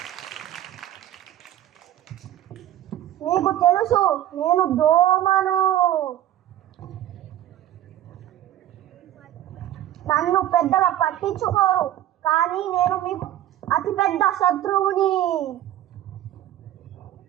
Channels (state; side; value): quieter; left; 12.6 dB